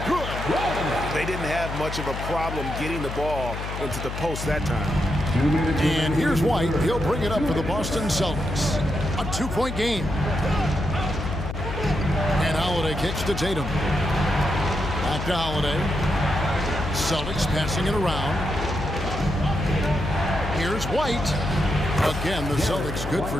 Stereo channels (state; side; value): noise; left; hum, 6 dB below the sound